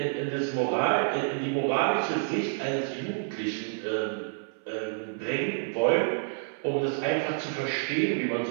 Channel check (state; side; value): silent; left; 59 dB below the other